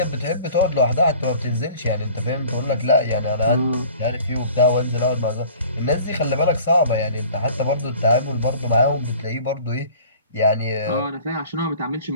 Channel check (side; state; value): both; inverted; correlation -0.48